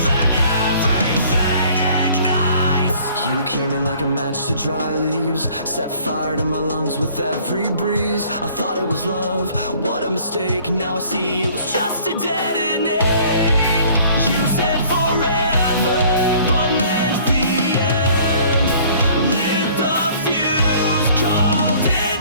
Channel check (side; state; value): both; inverted; correlation -0.55